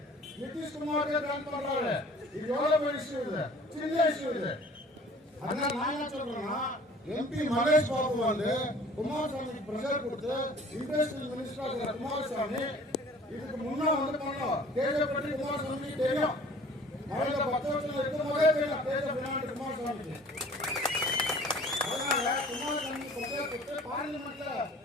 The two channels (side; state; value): both; normal; correlation 0.50